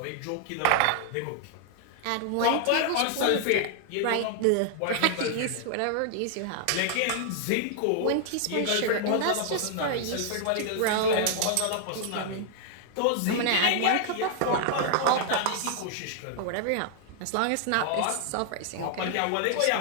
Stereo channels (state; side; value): different; both; correlation 0.00